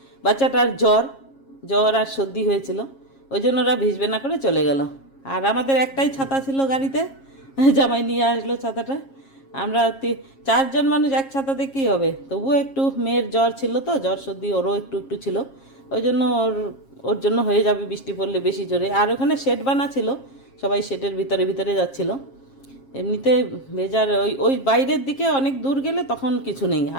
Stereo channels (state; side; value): late; right; 7.4 ms